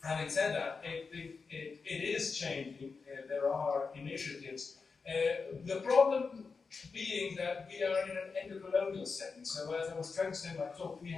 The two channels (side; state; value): right; quieter; 4.8 dB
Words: said that, it is changing. There are initiatives. The problem being that we are in an endocolonial setting. So as I was trying to say in my talk, we